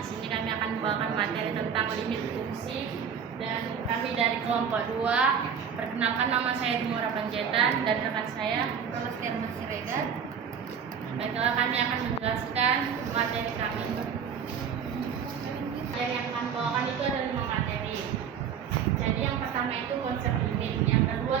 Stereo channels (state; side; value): quieter; left; 7.4 dB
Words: sini kami akan membawakan materi tentang limit fungsi dan kami dari kelompok 2. Perkenalkan, nama saya Dimora Panjaitan dan rekan saya Rolastia Siregar. Baiklah, kami akan menjelaskan materi kami. Yang akan bawakan itu ada 5 materi. Jadi yang pertama itu konsep limit, yang